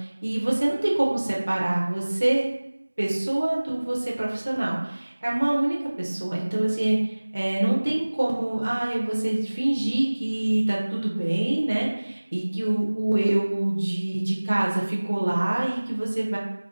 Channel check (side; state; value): both; inverted; correlation -1.00